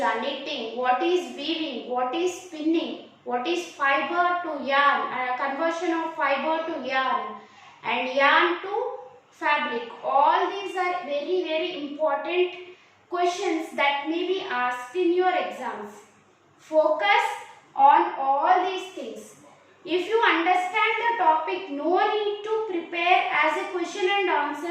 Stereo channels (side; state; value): both; identical; correlation 1.00